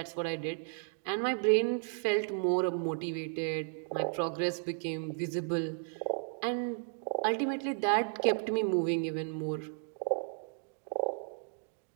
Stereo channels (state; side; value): silent; left; 55 dB below the other